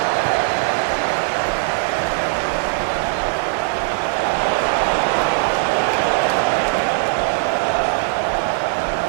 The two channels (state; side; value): silent; left; 66 dB below the other